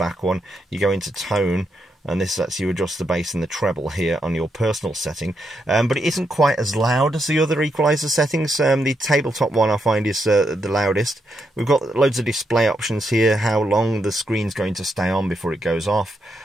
one, you go into tone, and this lets you adjust the bass and the treble here on your personal setting. But it isn't quite as loud as the other equalizer settings. The tabletop one I find is the loudest. We've got loads of display options here, how long the screen's going to stay on before it goes off.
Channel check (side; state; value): both; normal; correlation 0.81